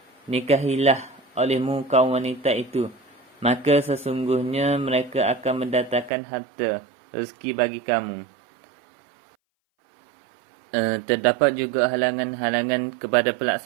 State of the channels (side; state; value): left; drops out; at 6.1 s